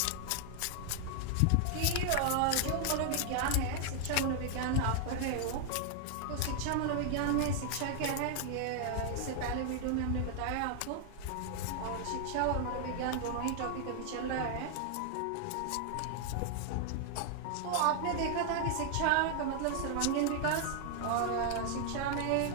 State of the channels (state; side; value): different; both; correlation 0.00